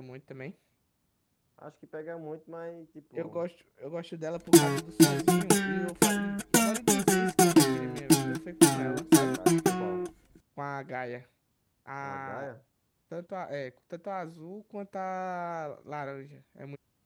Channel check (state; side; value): identical; both; correlation 1.00